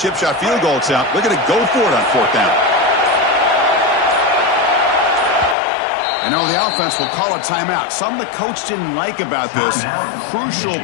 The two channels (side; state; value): right; drops out; at 5.6 s